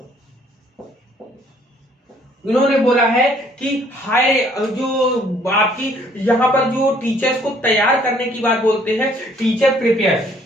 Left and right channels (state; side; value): normal; both; correlation 0.61